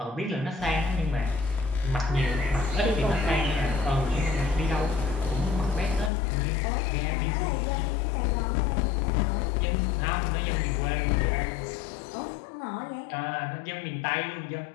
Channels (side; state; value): right; drops out; at 6.1 s